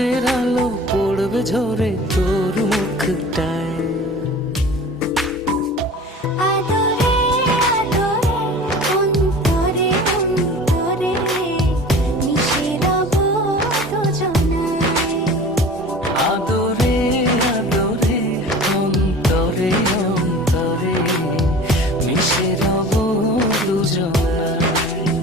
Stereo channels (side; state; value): both; normal; correlation 0.40